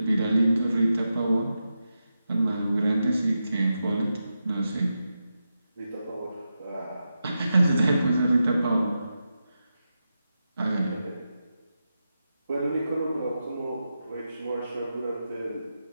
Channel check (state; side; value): inverted; both; correlation -0.89